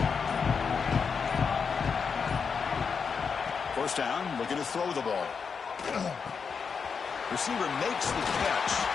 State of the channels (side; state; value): right; quieter; 5.8 dB